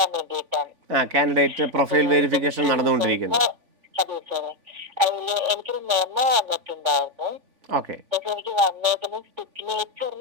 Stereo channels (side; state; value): left; late; 3.5 ms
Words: വേണ്ടിയിട്ടാണ്. കാൻഡിഡേറ്റ് പ്രൊഫൈൽ വെരിഫിക്കേഷൻ നടന്നുകൊണ്ടിരിക്കുന്നു. അതെ സാറേ, അതില് എനിക്കൊരു മെമ്മോ വന്നിട്ടുണ്ടായിരുന്നു. ഓക്കെ. പക്ഷെ എനിക്ക് വന്നേക്കുന്നത്